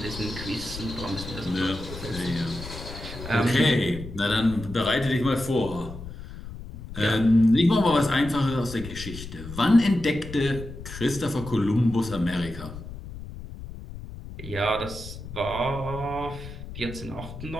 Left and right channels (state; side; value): noise; left; rumble, 12 dB below the sound